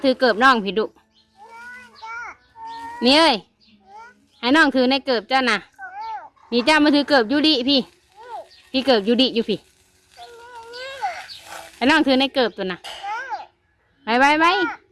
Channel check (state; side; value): identical; both; correlation 1.00